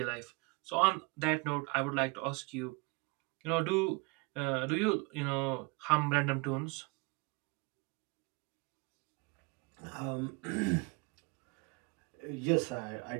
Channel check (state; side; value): quieter; left; 28.3 dB